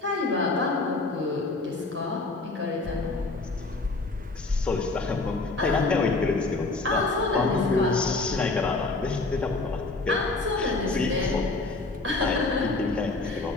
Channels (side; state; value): right; quieter; 3.4 dB